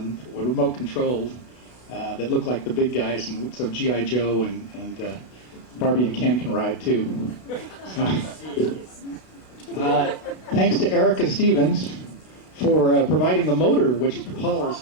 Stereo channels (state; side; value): late; right; 32 ms